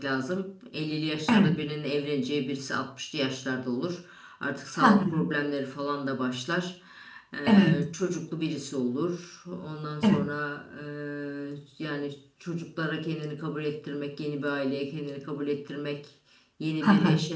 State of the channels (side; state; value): both; identical; correlation 1.00